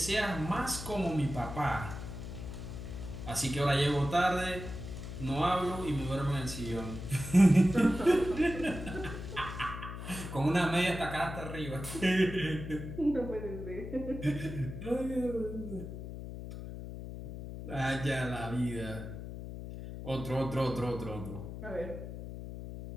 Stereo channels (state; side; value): noise; left; hum, 9 dB below the sound